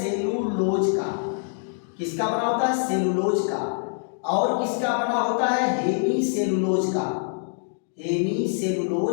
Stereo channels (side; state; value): right; silent; 62 dB below the other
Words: का। किसका बना होता है, सेलुलोज का। और किसका बना होता है, हेमी सेलुलोज का, हेमी